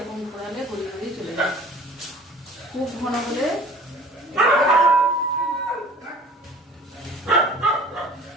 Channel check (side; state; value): both; normal; correlation 0.46